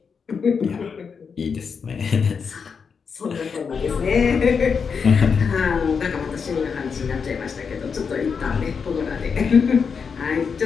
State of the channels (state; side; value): quieter; right; 5.9 dB